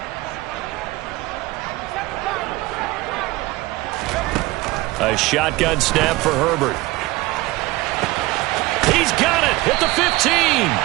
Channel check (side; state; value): left; quieter; 19.9 dB